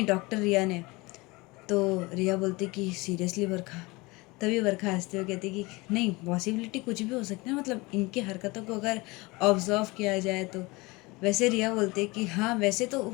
डॉक्टर रिया ने। तो रिया बोलती कि सीरियसली बरखा। तभी बरखा हंसते हुए कहती कि नहीं पॉसिबिलिटी कुछ भी हो सकती है, मतलब इनकी हरकतों को अगर ऑब्जर्व किया जाए तो। वैसे रिया बोलती कि हाँ वैसे तो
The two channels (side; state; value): right; quieter; 23.7 dB